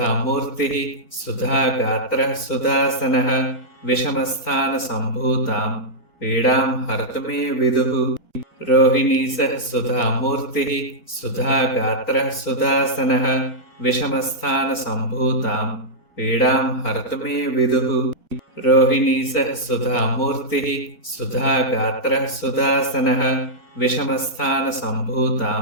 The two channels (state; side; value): late; left; 1.2 ms